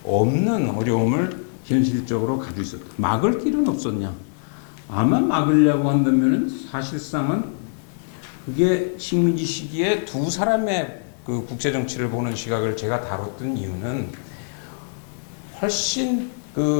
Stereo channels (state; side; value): silent; right; 59 dB below the other